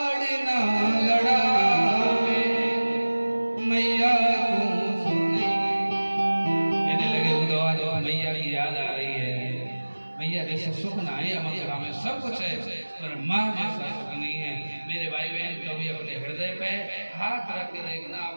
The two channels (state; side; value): inverted; both; correlation -1.00